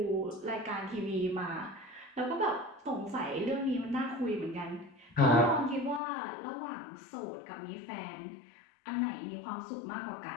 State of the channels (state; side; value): drops out; right; at 6.0 s